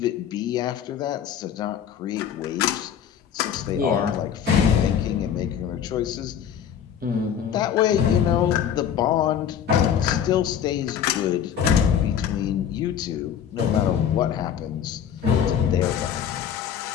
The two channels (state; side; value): quieter; right; 8.7 dB